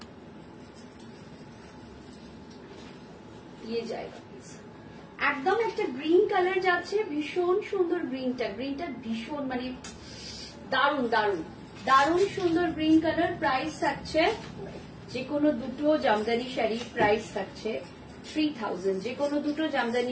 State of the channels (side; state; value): both; identical; correlation 1.00